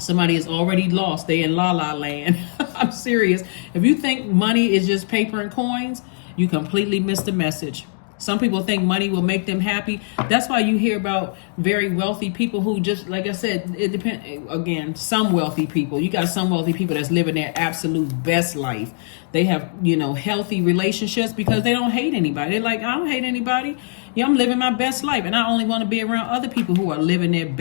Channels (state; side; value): silent; right; digital silence